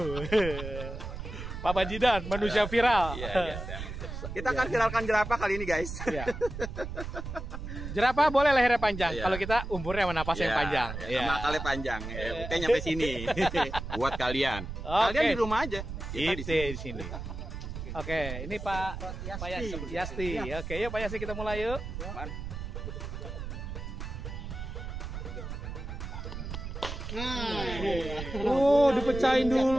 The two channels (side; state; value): right; noise; rumble, 7 dB below the sound